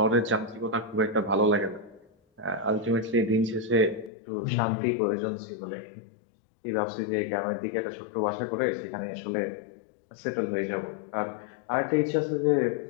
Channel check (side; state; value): right; drops out; at 4.1 s